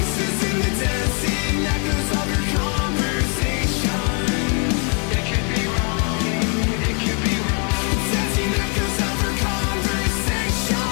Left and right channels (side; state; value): right; quieter; 37.8 dB